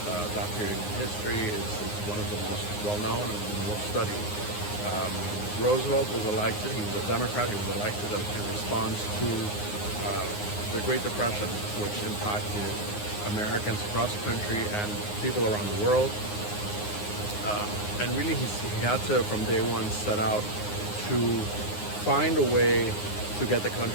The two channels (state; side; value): late; right; 9.6 ms